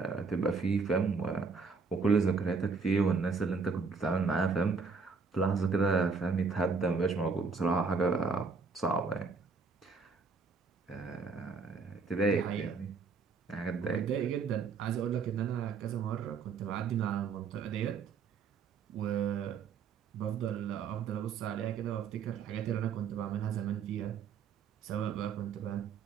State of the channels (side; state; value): left; quieter; 4.8 dB